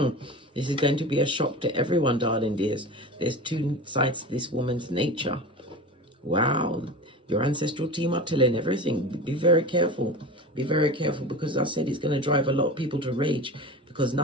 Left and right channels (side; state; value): both; normal; correlation 0.31